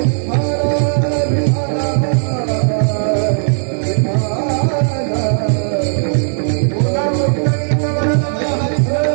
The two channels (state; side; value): silent; left; digital silence